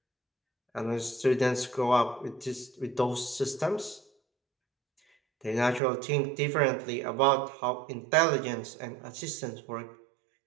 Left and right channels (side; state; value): left; drops out; at 5.8 s